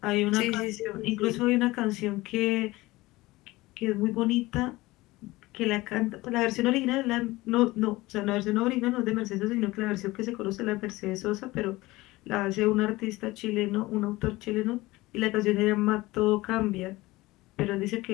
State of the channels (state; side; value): quieter; right; 19.7 dB